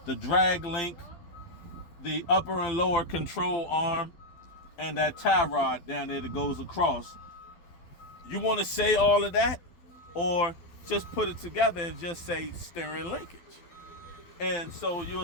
the drag link, the upper and lower control arm, and that tie rod down there that goes across. You want to say all of that, or just put it together and just say steering linkage? And so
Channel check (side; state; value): right; late; 12 ms